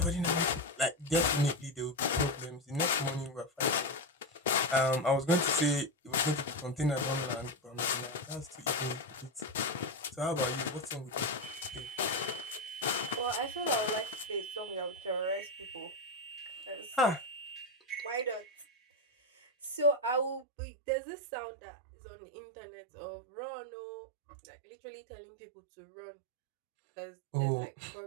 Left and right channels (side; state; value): left; drops out; at 20.5 s